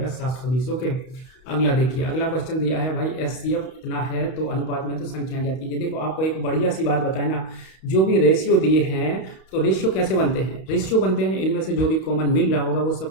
720। ओके, अगला देखिए, अगला क्वेश्चन दिया है भाई एचसीएफ इतना है तो अनुपात में तो संख्या ज्ञात कीजिए। देखो आपको एक बढ़िया सी बात बताए ना, जो भी रेशियो दिए हैं तो रेशियो कैसे बनते हैं, रेशियो बनते हैं इनमें से जो भी कॉमन मिल रहा होगा वो सब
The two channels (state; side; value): late; right; 31 ms